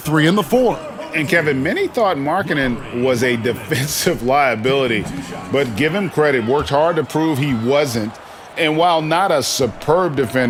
and the 4. And Kevin, many thought Markkanen was a defensive liability, but give him credit, worked hard to prove he wasn't. And while not a superb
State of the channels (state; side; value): identical; both; correlation 1.00